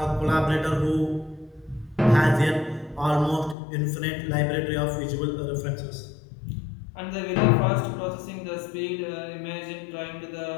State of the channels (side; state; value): right; drops out; at 3.6 s